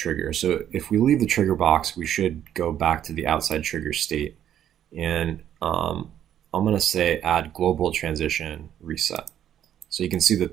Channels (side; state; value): left; quieter; 10.5 dB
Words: So if we leave the trigger box, we should go back to the outside trigger state. And I'm going to say add global transition reset. So you can see that